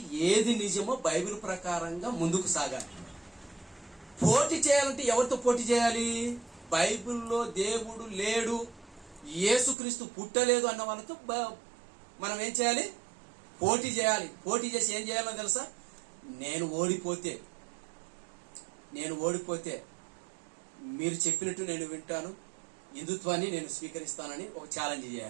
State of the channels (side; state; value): left; drops out; at 9.8 s